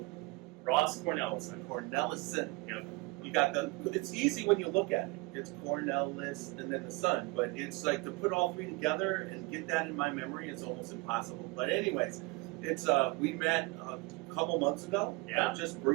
Ross Cornellison. Cornellison. Yep. You got it's easy when you look at it. It's Cornellis and then the son, but it's like to put all three together and get that in my memory is almost impossible. But anyways, it's we met a couple months ago, just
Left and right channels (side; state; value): left; quieter; 24.6 dB